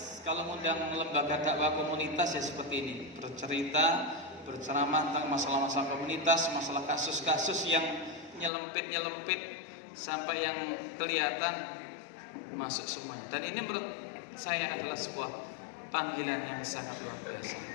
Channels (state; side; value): drops out; right; at 8.5 s